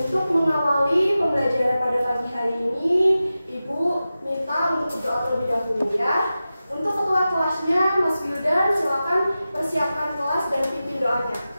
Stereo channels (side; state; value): both; inverted; correlation -0.94